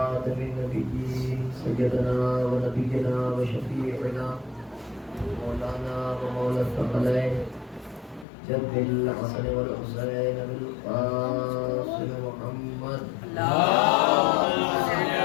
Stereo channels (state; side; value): drops out; right; at 8.2 s